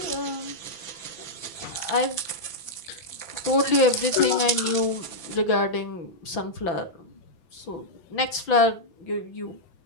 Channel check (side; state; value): right; late; 6.0 ms